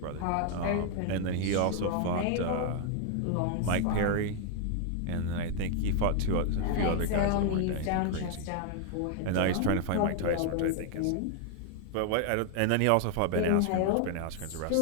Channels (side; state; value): both; different; correlation 0.00